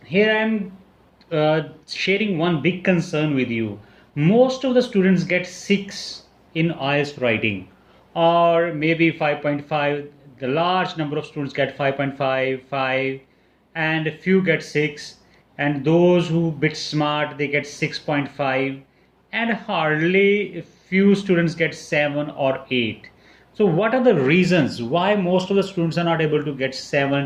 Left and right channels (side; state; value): both; identical; correlation 1.00